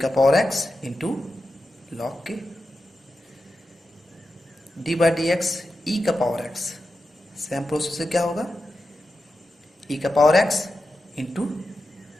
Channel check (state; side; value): normal; both; correlation 0.90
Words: का power x into log k। d/dx e का पावर x, सेम प्रोसेस से क्या होगा, e का power x into